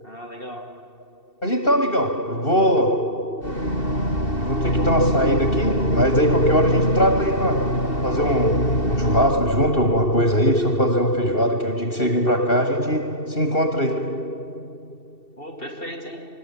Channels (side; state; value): right; late; 2.7 ms